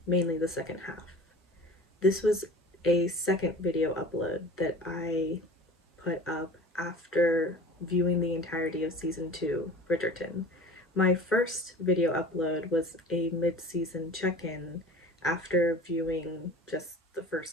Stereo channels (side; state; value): both; normal; correlation 0.40